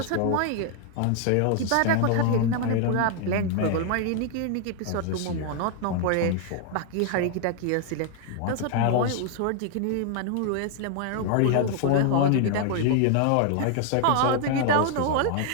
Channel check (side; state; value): both; different; correlation 0.00